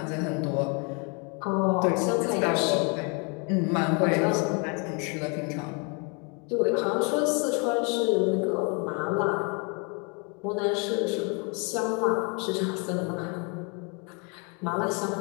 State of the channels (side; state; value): right; quieter; 33.7 dB